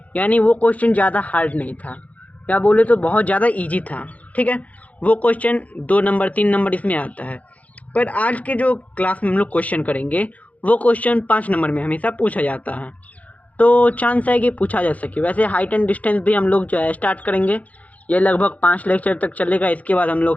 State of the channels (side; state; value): right; late; 0.070 ms